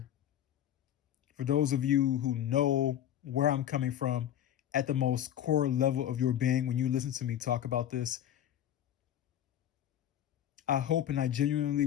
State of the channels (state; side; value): quieter; right; 11.0 dB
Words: for those of you who know where I'm coming from at the most core level of your being when you listen to me talk about this, I hope and I genuinely